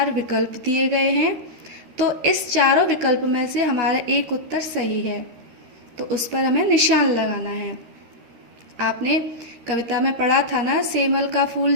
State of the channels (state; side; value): late; left; 13 ms